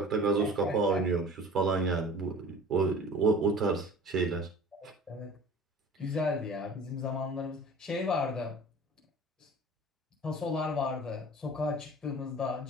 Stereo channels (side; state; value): both; normal; correlation 0.43